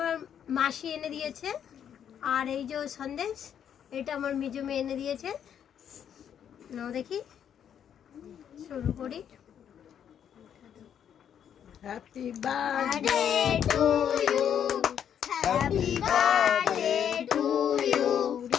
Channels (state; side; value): quieter; right; 8.9 dB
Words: মাসি এনে দিয়েছে, আর এই যে সন্দেশ এটা আমার মেজো মেয়ে এনে দিয়েছে। নাও দেখি, শুরু করি। Happy birthday to you, happy birthday to you,